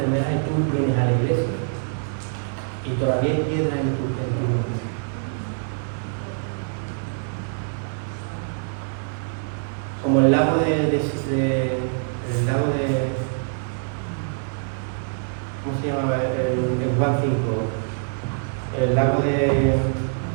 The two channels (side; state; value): left; silent; digital silence